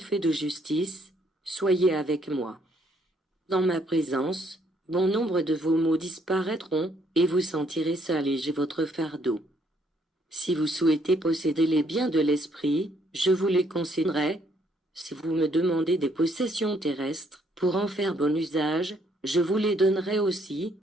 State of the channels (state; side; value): normal; both; correlation 0.69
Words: de justice, soyez avec moi. Dans ma présence, bon nombre de vos maux disparaîtront, et vous sentirez s'alléger votre fardeau. Si vous souhaitez posséder les biens de l'esprit, je vous les concéderai. Si vous me demandez des possessions terrestres, pour en faire bon usage, je vous les donnerai aussi,